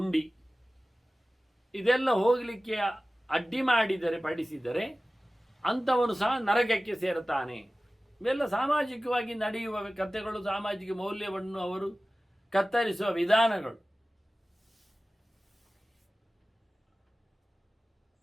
ಇದೆಲ್ಲ ಹೋಗಲಿಕ್ಕೆ ಅಡ್ಡಿ ಮಾಡಿದರೆ ಪಡಿಸಿದರೆ ಅಂಥವನು ಸಹ ನರಕಕ್ಕೆ ಸೇರುತ್ತಾನೆ. ಇವೆಲ್ಲ ಸಾಮಾಜಿಕವಾಗಿ ನಡೆಯುವ ಕಥೆಗಳು, ಸಾಮಾಜಿಕ ಮೌಲ್ಯವನ್ನು ಅವರು ಕತ್ತರಿಸುವ ವಿಧಾನಗಳು.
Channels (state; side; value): normal; both; correlation 0.97